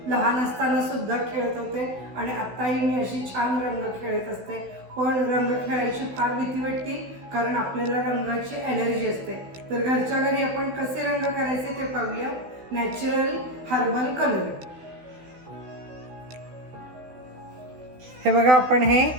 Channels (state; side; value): late; left; 16 ms